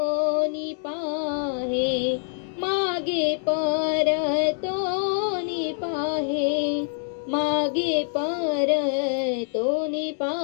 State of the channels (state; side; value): silent; right; 62 dB below the other